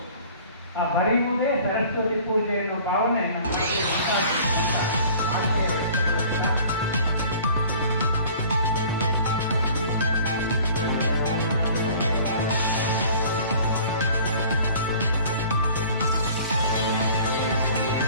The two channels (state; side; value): inverted; both; correlation -0.48